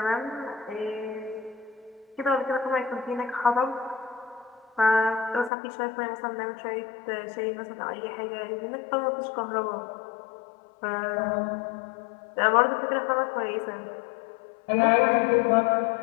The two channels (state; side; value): drops out; right; at 5.5 s